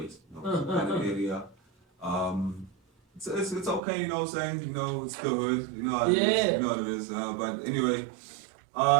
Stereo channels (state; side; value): drops out; left; at 3.8 s